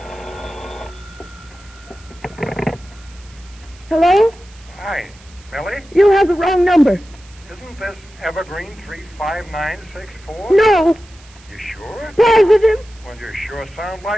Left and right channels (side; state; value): right; noise; hiss, 25 dB below the sound